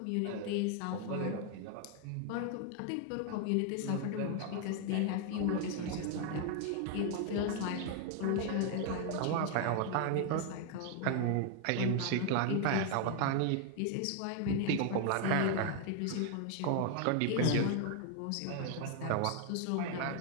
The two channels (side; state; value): both; different; correlation 0.00